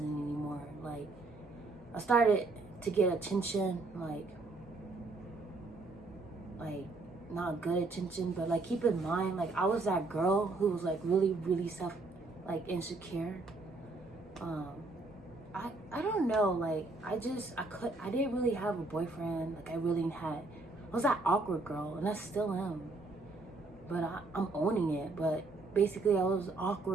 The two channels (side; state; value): left; quieter; 3.4 dB